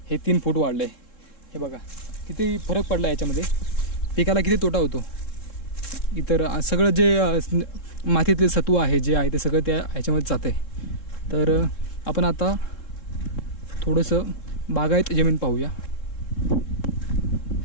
हे 3 फूट वाढलं आहे. हे बघा किती फरक पडला याच्यामध्ये, पिकाला किती तोटा होतो. इतर सगळं जे मातीतले सत्व आहे जे आहे ते सगळं त्या ह्याच्यामध्ये जातं आहे. तर आपण आता थोडंसं बागायत जमीन पाहूया.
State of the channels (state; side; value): late; right; 3.7 ms